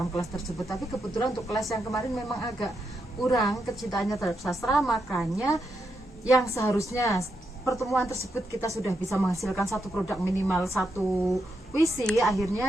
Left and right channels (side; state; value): both; normal; correlation 0.83